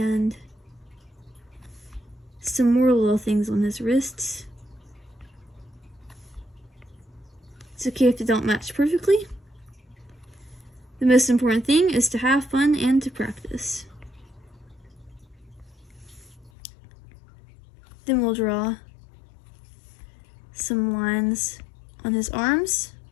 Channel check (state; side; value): drops out; right; at 16.5 s